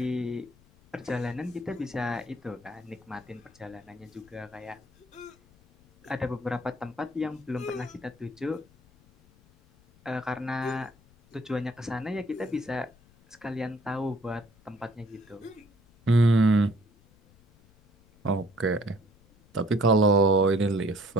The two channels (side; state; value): left; noise; rumble, 29 dB below the sound